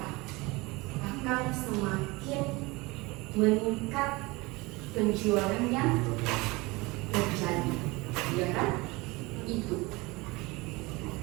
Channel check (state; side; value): quieter; left; 23.7 dB